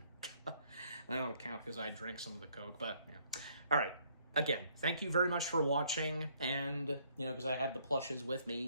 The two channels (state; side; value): inverted; both; correlation -0.66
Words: I don't count because I drank some of the Coke, but yeah. All right. Again, thank you very much for watching, and, you know, because I had the plushes with